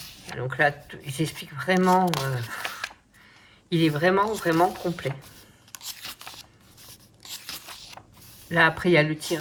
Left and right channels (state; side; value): identical; both; correlation 1.00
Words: Donc là, ils expliquent vraiment... il est vraiment complet. Là, après, il y a le